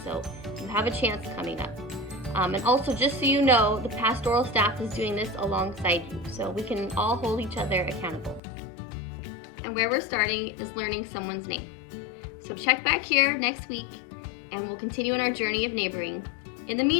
So you have a chance coming up. And also, just so you know, the pastoral staff is doing this alongside you, so we can all hold each other accountable. And where we're starting is learning someone's name. So check back here next week, and we'll continue on our journey of neighboring. In the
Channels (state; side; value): drops out; right; at 8.4 s